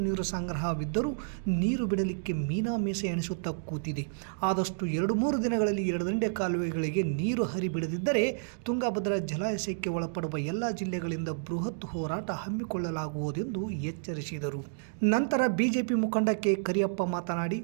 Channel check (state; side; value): silent; left; digital silence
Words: ನೀರು ಸಂಗ್ರಹವಿದ್ದರೂ ನೀರು ಬಿಡಲಿಕ್ಕೆ ಮೀನಾಮೀಸೆ ಎಣಿಸುತ್ತಾ ಕೂತಿದೆ. ಆದಷ್ಟು 2-3 ದಿನಗಳಲ್ಲಿ ಎಡದಂಡೆ ಕಾಲುವೆಗಳಿಗೆ ನೀರು ಹರಿಬಿಡದಿದ್ದರೆ ತುಂಗಭದ್ರಾ ಜಲಾಶಯಕ್ಕೆ ಒಳಪಡುವ ಎಲ್ಲ ಜಿಲ್ಲೆಗಳಿಂದ ಬೃಹತ್ ಹೋರಾಟ ಹಮ್ಮಿಕೊಳ್ಳಲಾಗುವುದೆಂದು ಎಚ್ಚರಿಸಿದರು. ನಂತರ ಬಿಜೆಪಿ ಮುಖಂಡ ಕೆ ಕರಿಯಪ್ಪ ಮಾತನಾಡಿ,